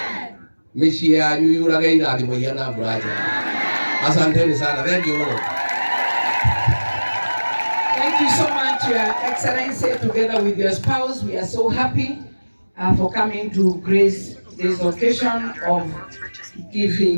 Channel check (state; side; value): inverted; both; correlation -1.00